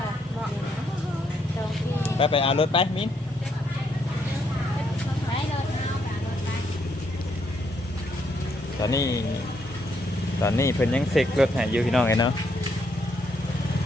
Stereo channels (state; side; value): normal; both; correlation 0.74